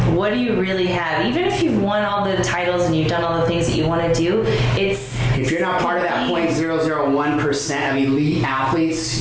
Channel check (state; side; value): identical; both; correlation 1.00